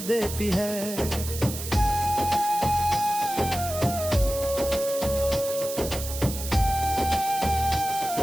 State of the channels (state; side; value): noise; right; hiss, 8 dB below the sound